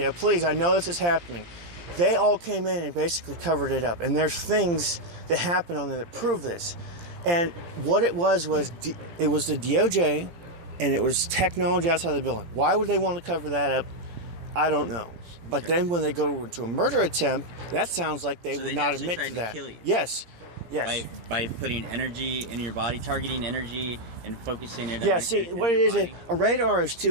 please. I know this is happening. They all came in and basically covered it up. And there's things that happen on there that prove this. And what it was it was the DOJ, and it was technology outside the building. Why would they want to cover that up? I don't know. But then when they go into a murder attempt, that sounds like they would not admit to that. Kill you. Yes. By putting energy in your body, targeting energy and focusing it. Yeah. See, what it is, a radar is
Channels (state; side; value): late; left; 17 ms